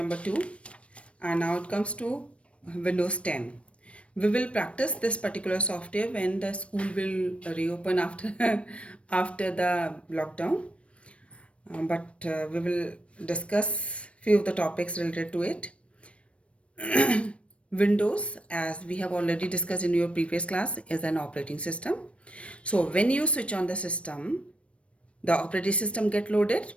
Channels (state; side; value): late; right; 0.061 ms